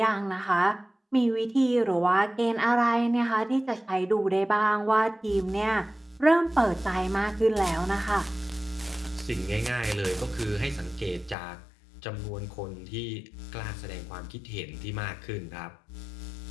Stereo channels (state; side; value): drops out; right; at 11.4 s